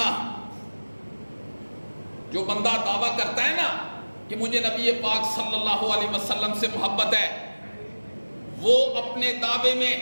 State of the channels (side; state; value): both; inverted; correlation -1.00